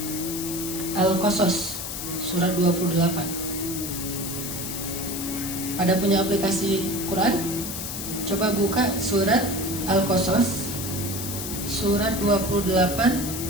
Al-Qasas, surat 28. Pada punya aplikasi Quran? Coba buka surat Al-Qasas, surat 28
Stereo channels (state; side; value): noise; left; hiss, 6 dB below the sound